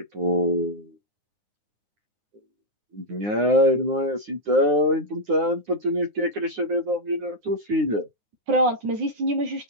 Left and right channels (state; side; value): late; left; 9.6 ms